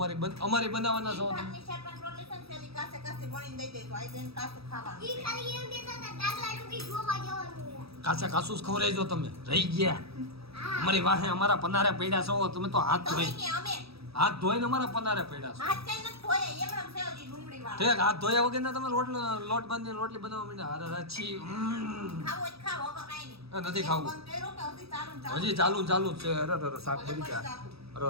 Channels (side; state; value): left; late; 0.77 ms